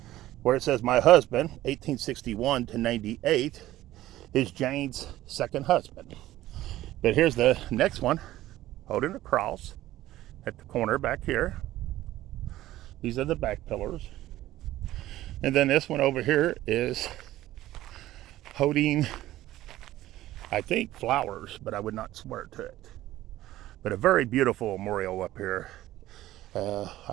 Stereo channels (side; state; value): left; quieter; 15.1 dB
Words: where it says my husband, 1861 to 98, is Jane's second husband. But here's the next one, holding a cross at the corner back here. These are the back pillars. And then this one over here is holding, I think, flowers, but I would not swear to it. But a very beautiful memorial up here.